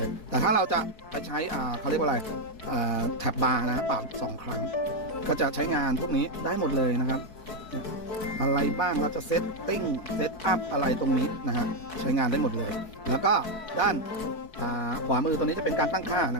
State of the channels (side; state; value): right; late; 4.6 ms